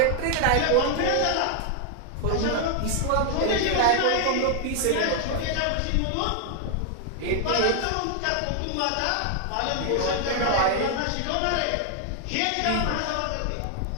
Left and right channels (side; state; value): both; different; correlation 0.00